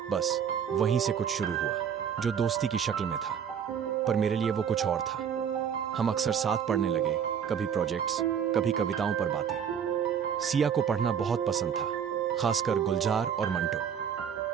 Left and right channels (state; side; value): quieter; left; 7.9 dB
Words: बस वहीं से कुछ शुरू हुआ, जो दोस्ती की शक्ल में था, पर मेरे लिए वो कुछ और था। हम अक्सर साथ पढ़ने लगे, कभी प्रोजेक्ट्स, कभी कविताओं पर बातें। सिया को पढ़ना बहुत पसंद था, खासकर गुलजार और